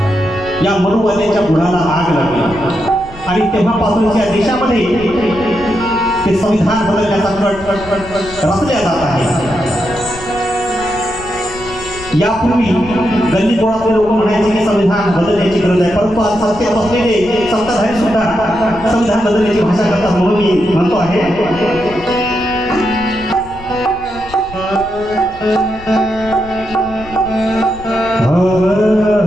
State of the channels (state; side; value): noise; left; rumble, 17 dB below the sound